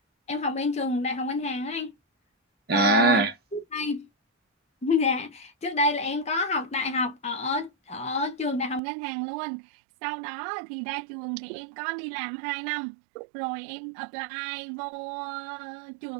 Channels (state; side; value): drops out; left; at 8.8 s